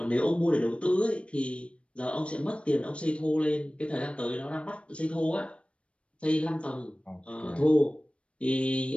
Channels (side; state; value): right; late; 0.060 ms